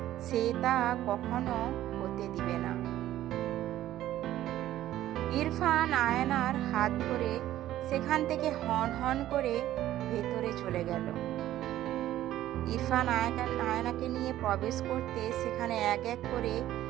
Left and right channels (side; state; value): left; quieter; 13.5 dB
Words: সে তা কখনো হতে দিবে না। ইরফান আয়নার হাত ধরে সেখান থেকে হন হন করে ভেতরে চলে গেল। ইরফান আয়নাকে নিয়ে প্রবেশ করতে সেখানে এক এক করে